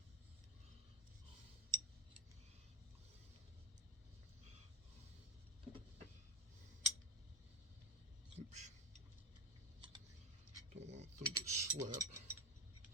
Oops. Don't want them to slip.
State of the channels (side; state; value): both; normal; correlation 0.21